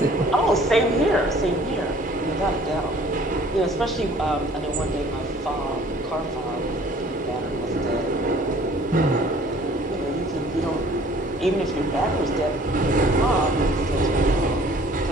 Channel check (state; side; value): normal; both; correlation 0.53